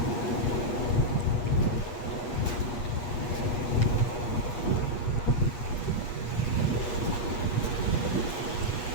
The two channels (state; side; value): late; right; 8.4 ms